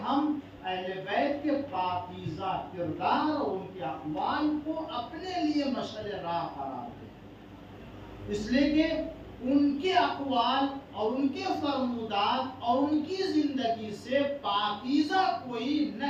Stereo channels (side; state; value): both; identical; correlation 1.00